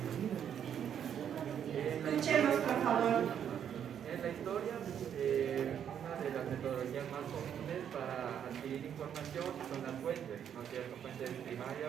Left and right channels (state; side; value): quieter; left; 8.9 dB